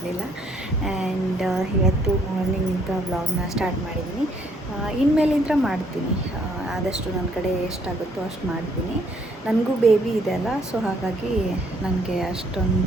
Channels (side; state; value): both; normal; correlation 0.67